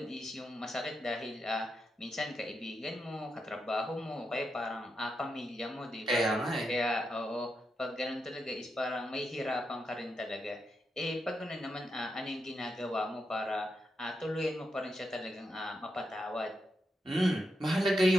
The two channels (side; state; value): both; normal; correlation 0.84